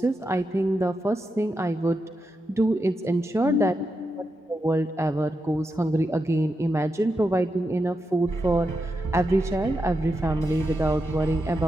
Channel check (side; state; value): both; normal; correlation 0.86